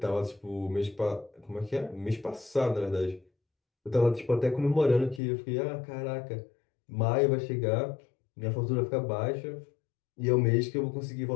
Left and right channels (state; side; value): drops out; right; at 5.2 s